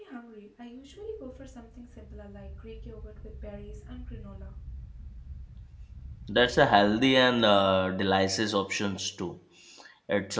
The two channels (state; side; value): identical; both; correlation 1.00